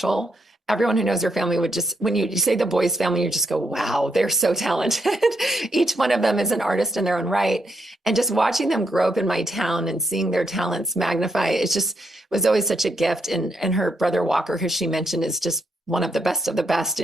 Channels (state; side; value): normal; both; correlation 0.79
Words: Everyone who knows her family would just, when you say the Boys family, you just go, wow, they're so talented. Each one of them is an artist in their own right. And just watching them grow up in my town and seeing their talents magnify, it just was always such a gift. And her brother Walker, who she mentioned, is just one of the best of the best.